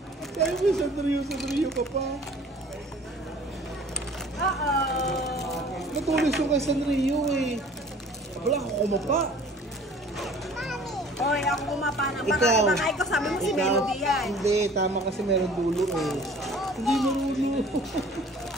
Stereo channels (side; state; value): both; normal; correlation 0.49